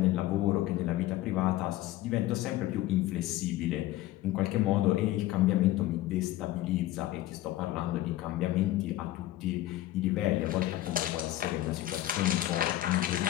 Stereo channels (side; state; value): right; quieter; 15.2 dB